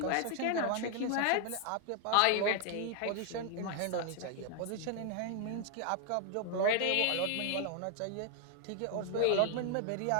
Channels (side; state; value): both; different; correlation 0.00